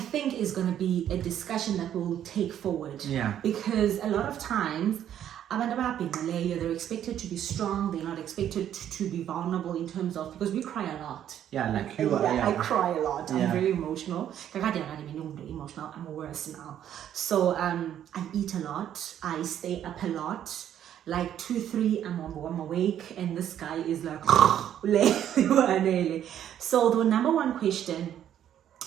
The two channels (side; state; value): left; quieter; 10.5 dB